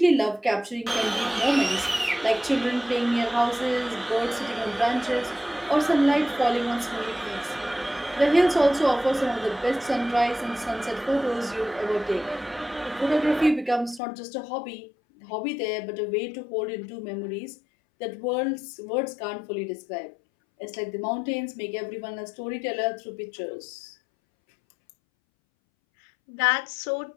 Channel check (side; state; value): right; drops out; at 14.0 s